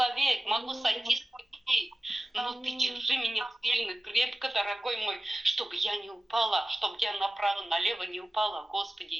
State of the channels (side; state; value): both; normal; correlation 0.96